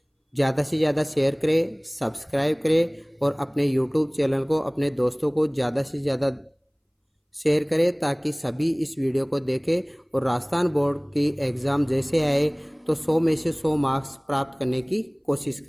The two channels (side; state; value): both; identical; correlation 1.00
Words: ज़्यादा से ज़्यादा शेयर करें, सब्सक्राइब करें और अपने YouTube चैनल को अपने दोस्तों को ज़्यादा से ज़्यादा शेयर करें ताकि सभी इस वीडियो को देखें और राजस्थान बोर्ड की एग्ज़ाम जैसे आए तो 100 में से 100 मार्क्स प्राप्त करने की कोशिश